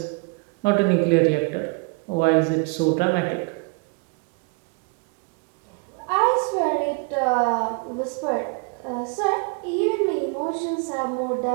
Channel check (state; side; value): quieter; left; 31.5 dB